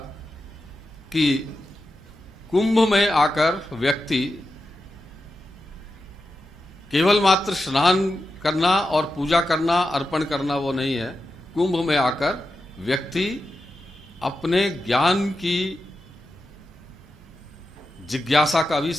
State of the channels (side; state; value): both; normal; correlation 0.90